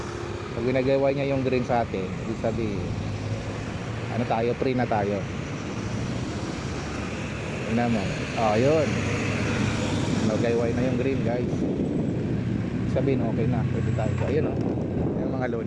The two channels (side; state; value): both; identical; correlation 1.00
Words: Pag winagayway niya yung green sa atin, ibig sabihin, ano tayo, free na tayo. Yun naman. Yun. Nagayway na yung green guys. Sabihin okay na, pwede tayo. Ayun yung mga